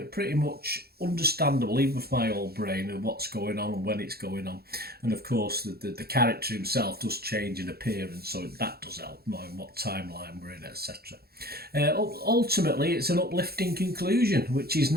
much understandable, even with my old brain, of what's going on and when it's going on. And of course, the character himself does change in appearance, so that does help knowing what timeline we're in, etc. Ultimately, it's an uplifting conclusion, which is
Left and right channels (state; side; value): late; left; 0.45 ms